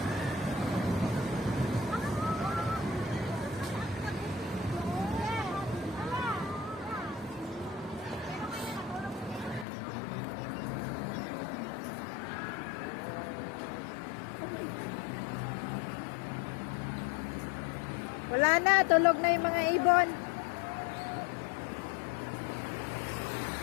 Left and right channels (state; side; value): drops out; right; at 9.7 s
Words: Wala na, tulog na yung mga ibon.